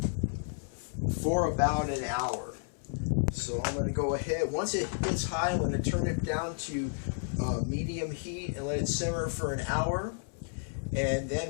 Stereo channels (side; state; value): right; silent; 57 dB below the other